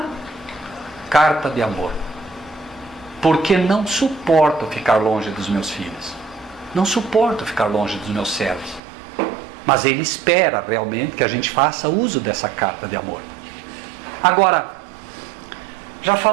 carta de amor, porque não suporto ficar longe dos meus filhos, não suporto ficar longe dos meus servos. Mas Ele espera realmente que a gente faça uso dessa carta de amor. Agora, já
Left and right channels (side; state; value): left; drops out; at 8.8 s